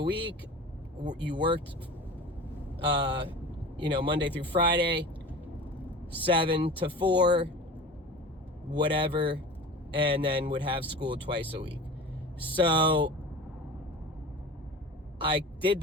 You worked Monday through Friday, 7 to 4, whatever, and then would have school twice a week. So I did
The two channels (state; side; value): normal; both; correlation 0.36